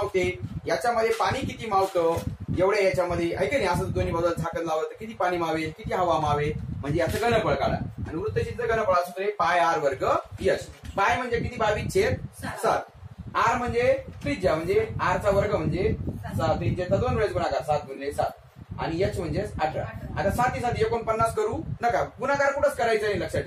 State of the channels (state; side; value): identical; both; correlation 1.00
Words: याच्यामध्ये पाणी किती मावतं, एवढ्या याच्यामध्ये आहे की नाही? असं दोन्ही बाजूला झाकण लावलं तर किती पाणी मावेल, किती हवा मावेल, म्हणजे याचं घनफळ काढा. आणि वृत्तचितीचं घनफळ असं पाय आर वर्ग एच. पाय म्हणजे किती? 22/7. आर म्हणजे त्रिज्या, म्हणजे आरचा वर्ग म्हणजे त्रिज्याचा 2 वेळेस गुणाकार 7 गुणिले 7. आणि एच म्हणजे 18. आता 7 7 49 करू नका. गुणाकार कुठंच करायचं नाही, लक्षात